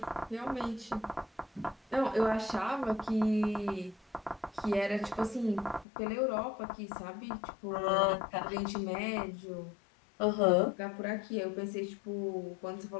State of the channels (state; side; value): drops out; right; at 5.9 s